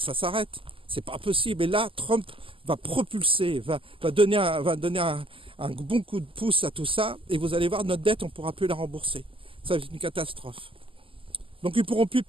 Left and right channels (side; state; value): left; late; 0.25 ms